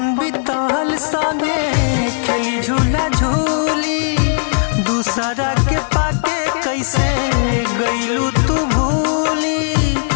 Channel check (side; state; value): right; silent; digital silence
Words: बीतल संगे खेली झूला झूली, दूसरा के पाके कैसे गईलू तू भूली।